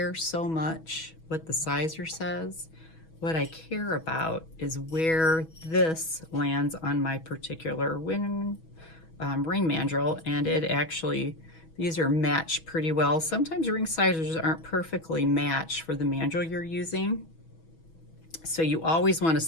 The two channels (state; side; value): late; right; 6.2 ms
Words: so much what the sizer says. What I care about is where this lands on my particular ring mandrel, and it actually, these are matched pretty well. Sometimes ring sizers aren't perfectly matched for the mandrel you're using. So you always want to